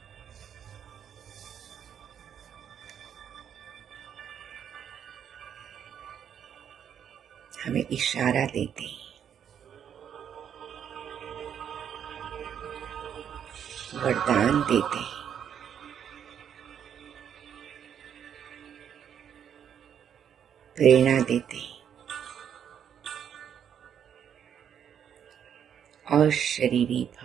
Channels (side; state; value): left; quieter; 8.7 dB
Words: हमें इशारा देते, वरदान देते, प्रेरणा देते। अशरीरी